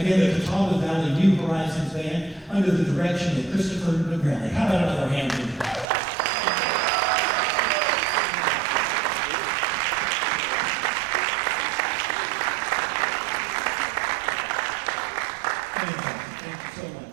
again, the Catawba Valley New Horizons Band under the direction of Christopher McGrelly. How about another hand for them?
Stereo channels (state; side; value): drops out; left; at 5.9 s